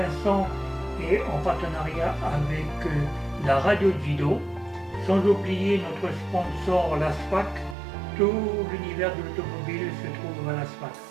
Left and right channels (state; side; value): drops out; left; at 7.8 s